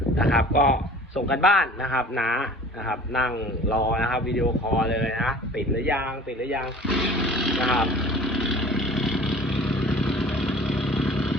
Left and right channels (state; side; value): normal; both; correlation 0.45